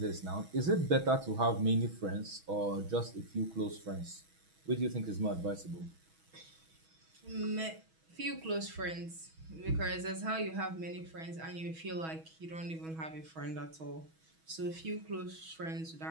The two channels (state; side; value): late; left; 6.2 ms